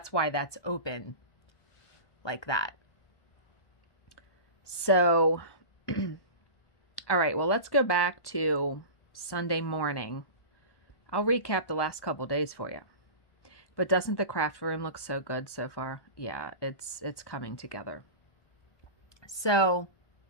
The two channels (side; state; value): right; late; 1.1 ms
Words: why that's open like that. So, all right, well, let's go back to Sunday morning. I'll recap the last couple days for you. But doesn't the craft room look so good so far? Yeah, it's coming together. So